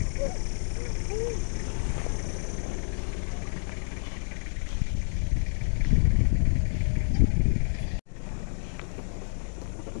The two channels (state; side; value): silent; right; digital silence